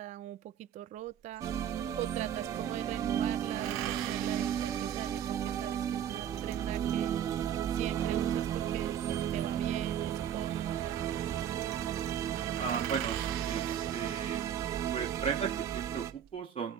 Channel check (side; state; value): left; quieter; 9.5 dB